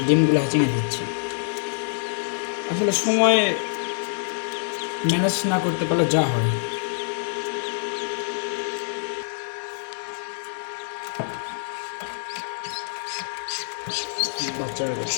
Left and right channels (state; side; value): silent; right; 61 dB below the other